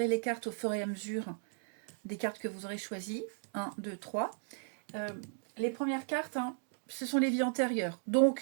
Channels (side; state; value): left; silent; digital silence